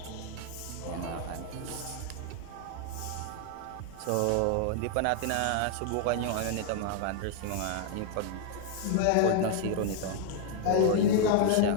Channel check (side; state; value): both; different; correlation 0.00